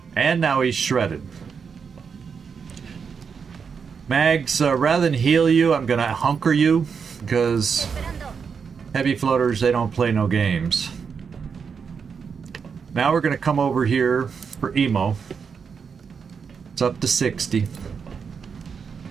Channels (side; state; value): left; quieter; 6.1 dB